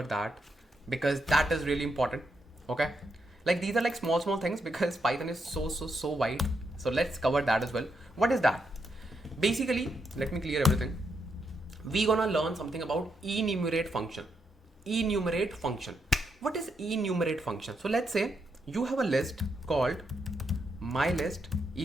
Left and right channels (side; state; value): both; normal; correlation 0.80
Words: that because that is really important. Okay. Like these are like small things because Python is so wide. So let's cover that as well. What is that? Basically, let me clear everything. We're gonna learn something about enumerate function. Enumerate function. What is enumerate function? So let's say you have a list called my list